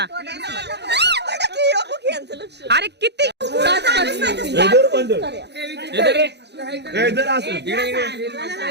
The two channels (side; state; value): left; late; 0.49 ms